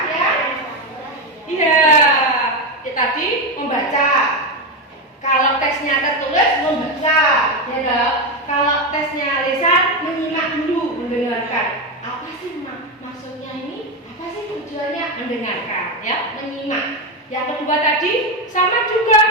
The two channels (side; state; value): both; normal; correlation 0.11